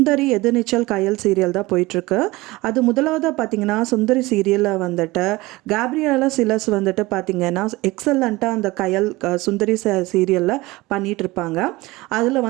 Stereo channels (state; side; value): quieter; left; 20.7 dB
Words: எதிர்நீச்சல் கயல் சீரியல் தான் போயிட்டுருக்கு. அது முதலாவதாக பார்த்திங்கன்னா சுந்தரி சீரியலில் வந்துட்டு கேப்ரியலா சிலஸ் வந்துட்டு பார்த்திங்கன்னா எக்ஸலண்ட்டாக அந்த கயல் சுந்தரி சீரியலில் பண்ணிகிட்ருப்பாங்க. அதில்